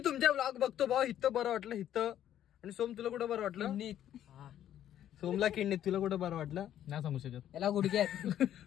तुमच्या ब्लॉग बघतो भाऊ, इथं बरं वाटलं इथं. आणि सोम तुला कुठं बरं वाटलं? सोमला किडनीत, तुला कुठं बरं वाटलं? नाही सांगू शकत. याला गुडघ्यात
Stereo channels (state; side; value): quieter; right; 11.1 dB